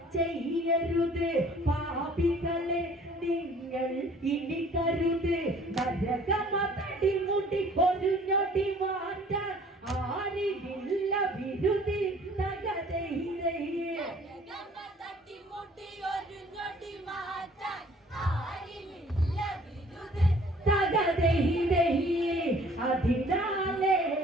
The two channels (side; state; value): both; normal; correlation 0.54